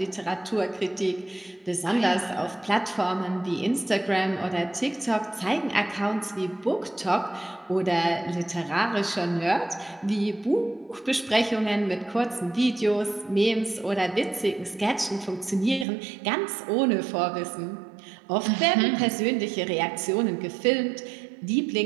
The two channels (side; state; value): left; drops out; at 15.9 s